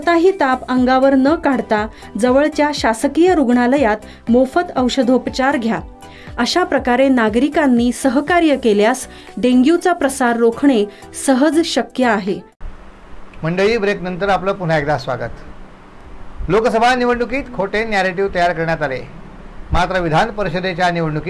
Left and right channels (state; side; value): identical; both; correlation 1.00